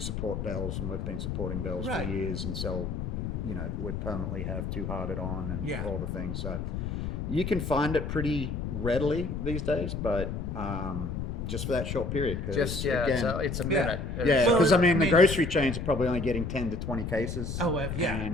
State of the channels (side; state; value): left; noise; rumble, 4 dB below the sound